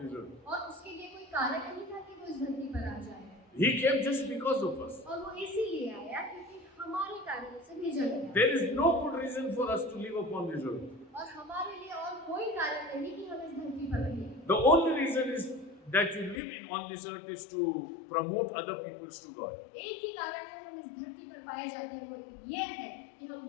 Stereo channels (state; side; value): drops out; right; at 16.4 s